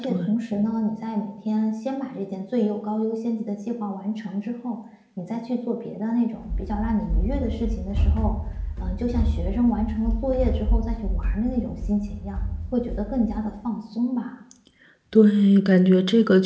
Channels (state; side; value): identical; both; correlation 1.00